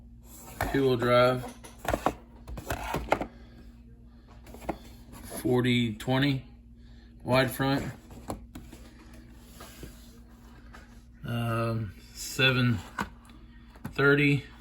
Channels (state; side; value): identical; both; correlation 1.00